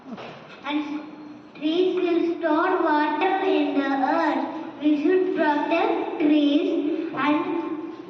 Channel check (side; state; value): both; identical; correlation 1.00